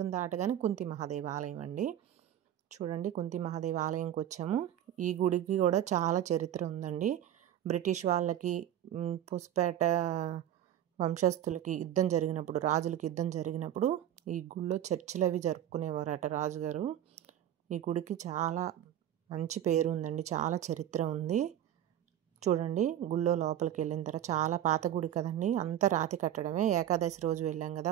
దాటగానే కుంతి మహాదేవి ఆలయం అండి. చూడండి కుంతి మహాదేవి ఆలయంకి వచ్చాము. ఈ గుడికి కూడా చాలా చరిత్ర ఉందండి. బ్రిటిష్ వాళ్ళకి పుస్పేట వంశస్థులకి యుద్ధం జరిగినప్పుడు, రాజులకి యుద్ధం జరిగినప్పుడు ఈ గుడిలో చర్చలు అవి జరుపుకునేవారట రాజుగారు. ఈ గుడికి చాలా మంచి పేరు ఉందండి. చాలా చరిత్ర ఉంది. చూడండి గుళ్ళో లోపలికి వెళ్ళిన తర్వాత చాలా పాత గుడి కదండి. అంతా రాతి కట్టడమే. ఏకాదశి రోజు వెళ్ళాం కదా,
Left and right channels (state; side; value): quieter; left; 11.3 dB